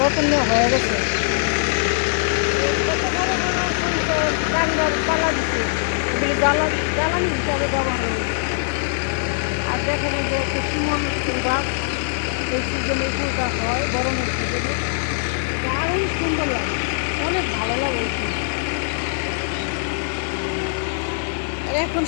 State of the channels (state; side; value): silent; right; digital silence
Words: হয়ে গেছে। কত বড় বড় সরিষার কান্ডার পালা দিচ্ছে, এগুলি জ্বালানি হিসাবে ব্যবহার হয়েছে। আর দেখেন এই যে একটা শিমন গাছ, এই সিজনে ফুলটা হয়, গরমের সিজনে দারুণ সুন্দর লাগে, অনেক ভালো লাগে এই ফুল। আর এখন